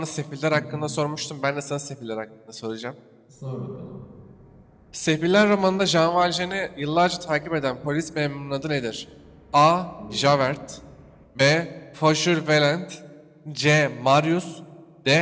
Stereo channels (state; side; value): identical; both; correlation 1.00